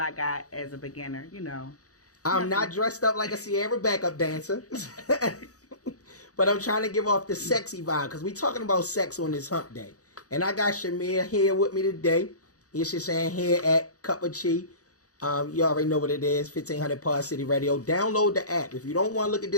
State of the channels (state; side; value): late; right; 0.66 ms